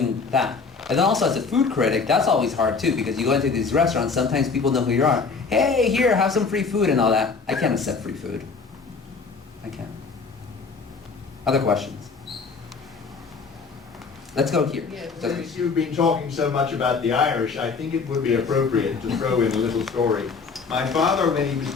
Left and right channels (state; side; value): quieter; right; 4.8 dB